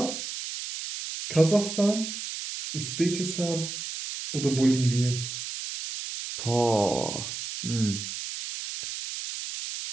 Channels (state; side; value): noise; right; hiss, 7 dB below the sound